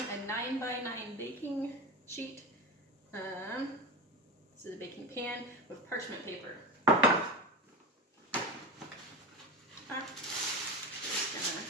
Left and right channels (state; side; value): normal; both; correlation 0.24